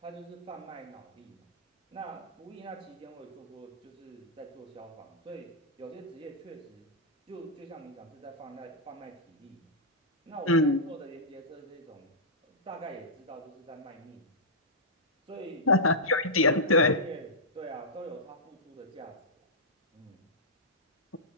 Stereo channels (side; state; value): both; normal; correlation -0.12